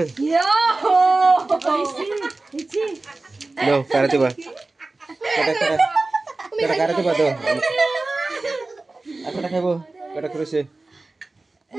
ইয়ো নাও কারাতে বা কাটা কারাতে বা দাও একটা খাইবো কাটা করেছে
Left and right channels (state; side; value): quieter; left; 3.3 dB